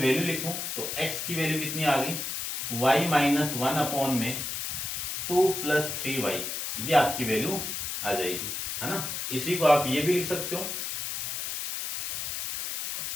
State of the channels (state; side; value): noise; left; hiss, 4 dB below the sound